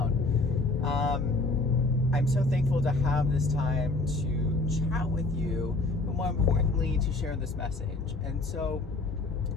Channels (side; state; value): right; quieter; 3.2 dB